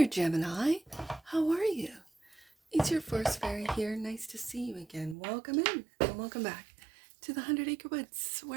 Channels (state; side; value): drops out; left; at 5.2 s